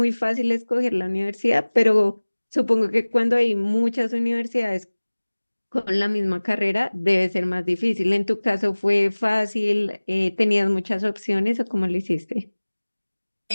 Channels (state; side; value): inverted; both; correlation -1.00